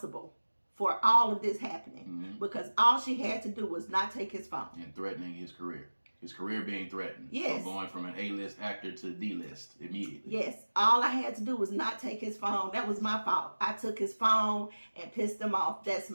for all of this happening because all she had to do was not take his phone. And threatening his career. His career being threatened. Yes. From going from an A-list actor to D-list immediately. Yes. All I had to do was not take his phone. That was my fault. I took his phone and pissed him off. That's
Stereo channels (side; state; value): both; inverted; correlation -1.00